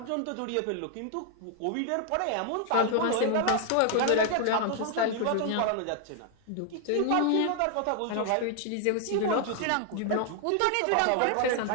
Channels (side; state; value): both; different; correlation 0.00